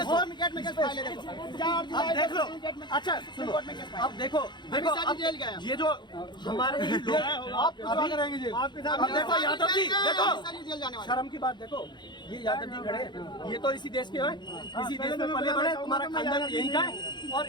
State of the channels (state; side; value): late; right; 0.22 ms